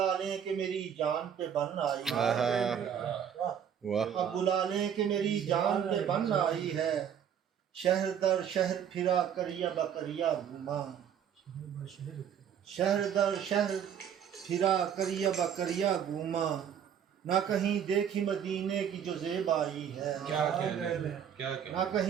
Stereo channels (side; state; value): left; quieter; 8.6 dB